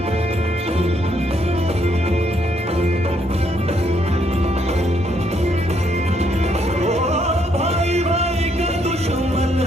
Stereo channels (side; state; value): both; normal; correlation 0.72